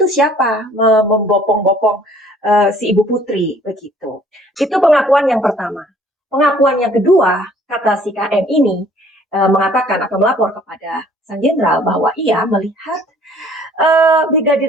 itu siapa membopong-bopong si Ibu Putri?" Begitu. Itu pengakuan yang pertama. Pengakuan yang kedua, kata si KM ini mengatakan atau melapor kepada Sang Jenderal bahwa ia melihat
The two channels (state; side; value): normal; both; correlation 0.56